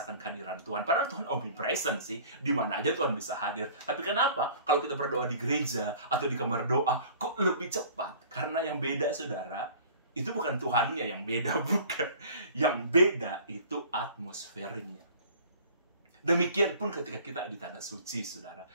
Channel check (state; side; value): inverted; both; correlation -0.47